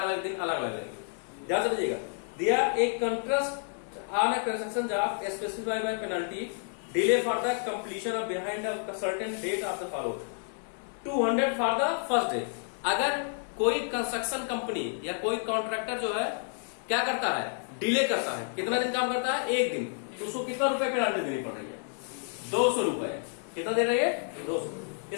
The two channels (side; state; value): right; silent; 58 dB below the other